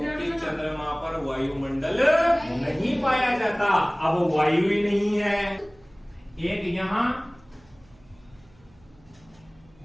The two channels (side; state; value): right; noise; hum, 29 dB below the sound